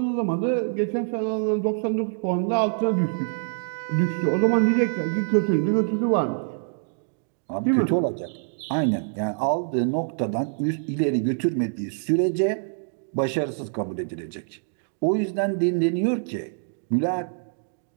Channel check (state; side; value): silent; left; digital silence